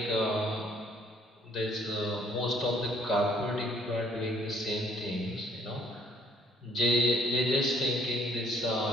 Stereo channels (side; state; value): both; normal; correlation 0.61